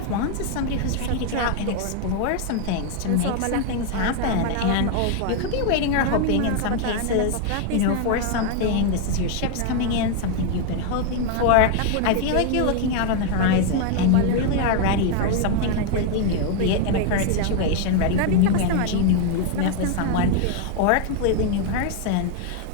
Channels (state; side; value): different; both; correlation 0.01